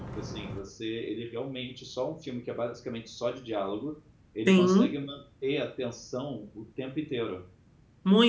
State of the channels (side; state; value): both; identical; correlation 1.00